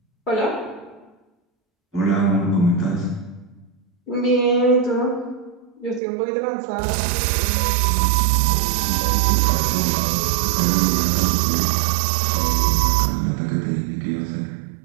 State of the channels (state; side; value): drops out; left; at 6.0 s